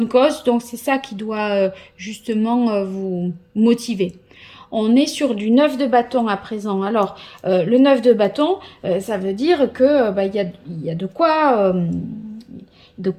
cause, donc c'est ça qui doit justement vous motiver. On est sur du 9 de bâton à présent. Alors, le 9 de bâton, ça veut dire que y a de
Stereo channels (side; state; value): both; identical; correlation 1.00